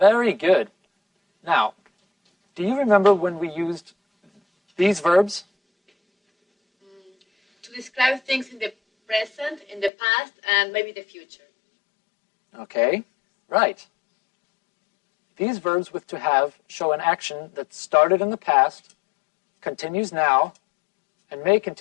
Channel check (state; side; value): drops out; right; at 9.9 s